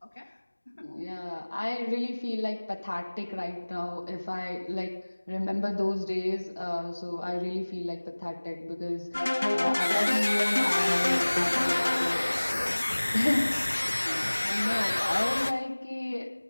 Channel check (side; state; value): both; inverted; correlation -1.00